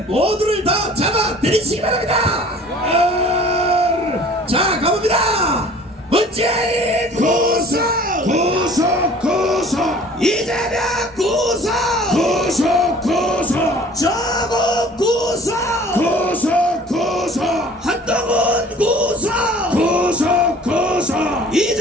모두를 다 잡아들이시기 바랍니다. 자, 가봅니다. 문재인 구속, 이재명 구속, 조국 구속, 한동훈 구속,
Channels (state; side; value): normal; both; correlation 0.49